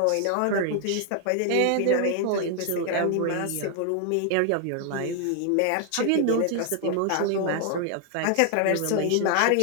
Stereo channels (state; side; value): different; both; correlation 0.00